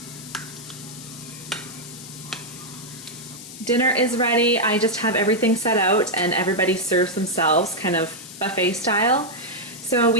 Dinner is ready. I just have everything set out and everybody serves themselves kind of buffet style. So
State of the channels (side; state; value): left; noise; hiss, 14 dB below the sound